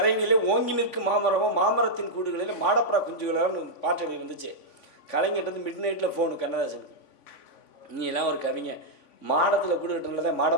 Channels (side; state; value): right; late; 3.5 ms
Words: ஓங்கி நிற்கும் மாமரமும் மாமரத்தின் கூடுகளில் மாடப்புறா குஞ்சுகளான்னு பாட்டு எழுதி வந்துச்சு. கலைஞர்கிட்ட வந்து மிட் நைட்டில் ஃபோனு கண்ணதாசனுக்கு, நீ எல்லாம் ஒரு கவிங்க, மாடத்தில் கூடு கட்டுறதுல